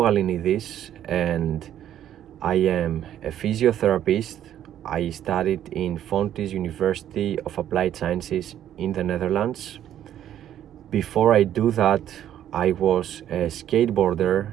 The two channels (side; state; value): left; quieter; 11.0 dB